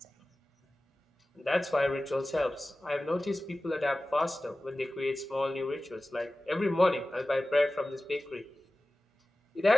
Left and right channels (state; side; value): normal; both; correlation 0.96